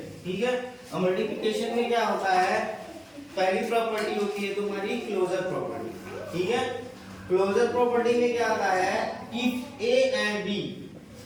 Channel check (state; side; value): identical; both; correlation 1.00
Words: ठीक है, अब मल्टीप्लिकेशन में क्या होता है, पहली प्रॉपर्टी होती है तुम्हारी क्लोजर प्रॉपर्टी। ठीक है, क्लोजर प्रॉपर्टी में क्या आता है, if a and b,